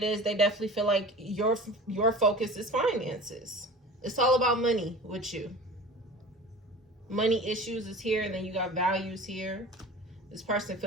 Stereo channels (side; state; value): both; normal; correlation 0.37